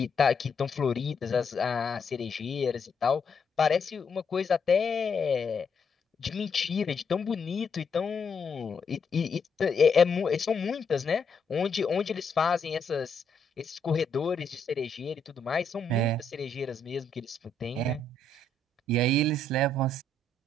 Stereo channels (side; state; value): right; quieter; 3.1 dB